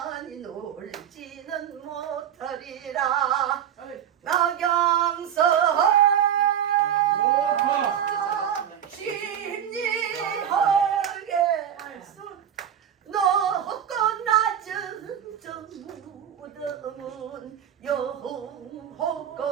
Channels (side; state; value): left; quieter; 9.5 dB